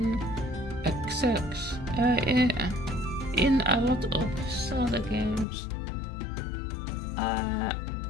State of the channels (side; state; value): right; drops out; at 5.5 s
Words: XX in a lot of Zelda games.